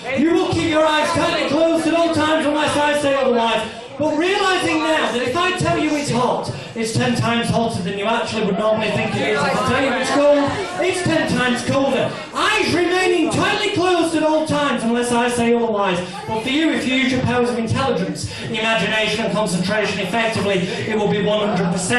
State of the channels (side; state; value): both; identical; correlation 1.00